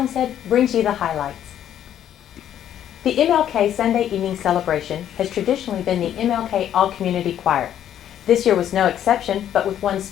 brings you the highlights. The MLK Sunday evening celebration has traditionally been the MLK All-Community Choir. This year was no exception, but with one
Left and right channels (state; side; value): quieter; right; 10.6 dB